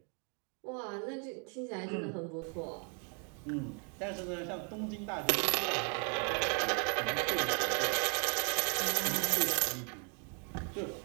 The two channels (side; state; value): left; quieter; 39.0 dB